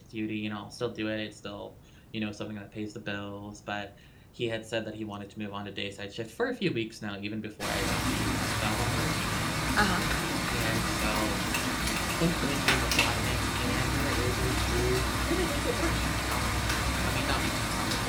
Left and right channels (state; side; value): identical; both; correlation 1.00